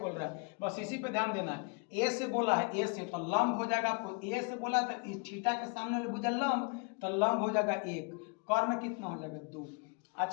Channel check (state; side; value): quieter; right; 34.0 dB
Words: रहा है, बस इसी पे ध्यान देना है। ए से बोला है, ए से तो लंब हो जाएगा, आपको ए से बोला तो इस थीटा के सामने वाले भुजा लंब, तो लंब हो जाएगा 1, कर्ण कितना हो जाएगा 2।